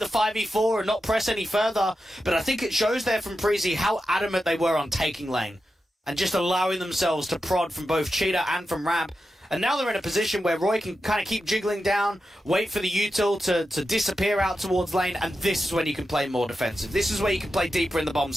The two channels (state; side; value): normal; both; correlation 0.90